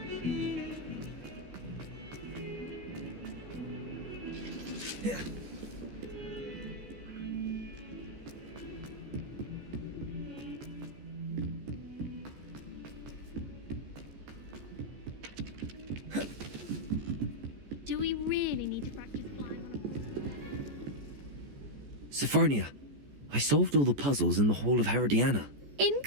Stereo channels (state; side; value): late; left; 14 ms